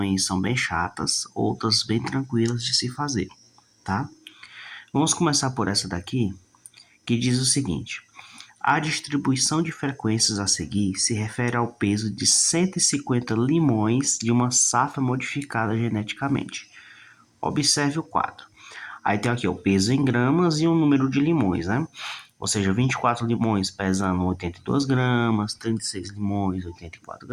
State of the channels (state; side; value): identical; both; correlation 1.00